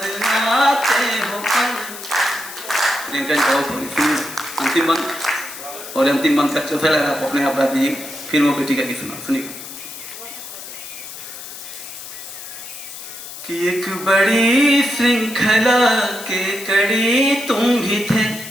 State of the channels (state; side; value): noise; left; hiss, 12 dB below the sound